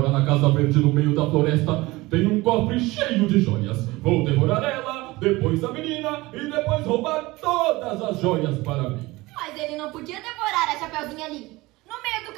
na Casa Verde no meio da floresta tem um cofre cheio de joias. Vou devorar ela, depois a menina e depois roubar todas as joias para mim. Mas ele não podia devorar a Chapeuzinho ali, no meio do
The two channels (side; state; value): left; quieter; 20.8 dB